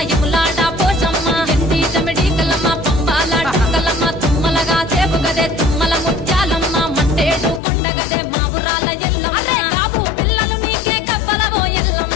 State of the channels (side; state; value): right; drops out; at 7.6 s